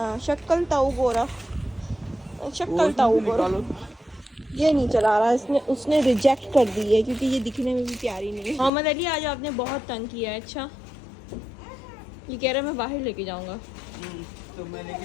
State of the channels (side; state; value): right; drops out; at 8.7 s